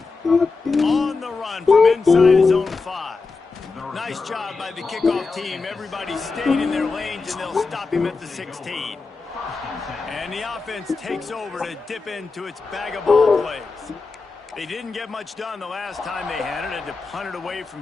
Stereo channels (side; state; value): right; quieter; 4.2 dB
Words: it. On the run from inside his own 5. Nice job by the kickoff team. Everybody stayed in their lanes, and they'll stop him at the 16. And the offense takes over to dip into its bag of ball plays. They didn't get much done the last time they had it. Had to punt it away